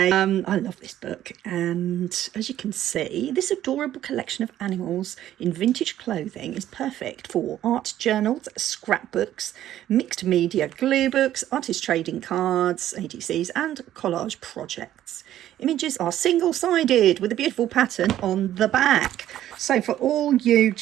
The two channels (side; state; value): left; quieter; 12.4 dB